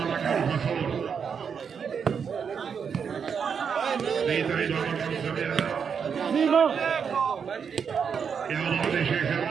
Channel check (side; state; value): left; quieter; 6.7 dB